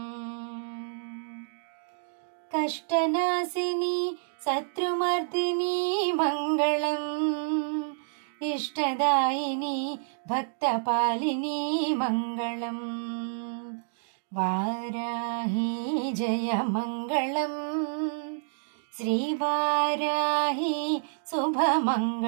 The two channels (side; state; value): left; silent; digital silence